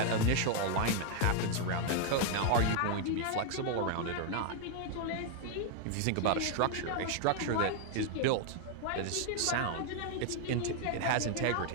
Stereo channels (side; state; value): both; different; correlation 0.00